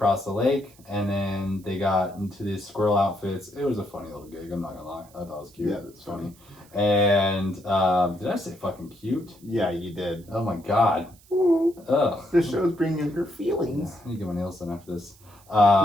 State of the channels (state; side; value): noise; right; hiss, 27 dB below the sound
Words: the lake, and then they got into these squirrel outfits. It was a funny little gig. I'm not gonna lie. I thought it was cute. Yeah, that's funny. And did I say fucking cute? Yeah, you did. Oh my god. Ugh. The show's bringing your feelings. I need to get my nails done after this.